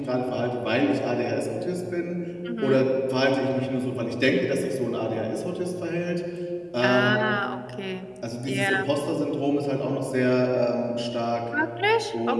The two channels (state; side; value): identical; both; correlation 1.00